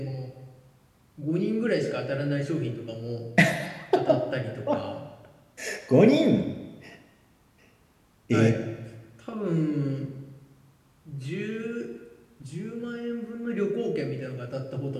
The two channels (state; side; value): identical; both; correlation 1.00